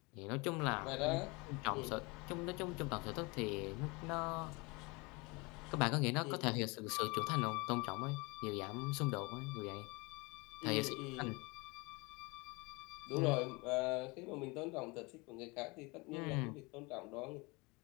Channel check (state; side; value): quieter; right; 27.1 dB